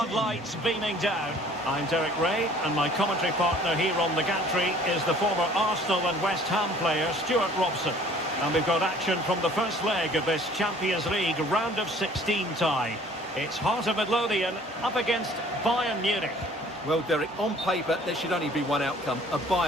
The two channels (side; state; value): both; normal; correlation 0.53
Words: beaming down. I'm Derek Ray and my commentary partner here on the gantry is the former Arsenal and West Ham player Stuart Robson. And we've got action from the first leg of this Champions League round of 16 tie. It's Heart of Midlothian up against Bayern Munich. Well, Derek, on paper, there should only be one outcome, a